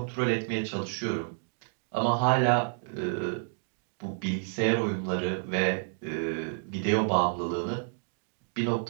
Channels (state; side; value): silent; left; 58 dB below the other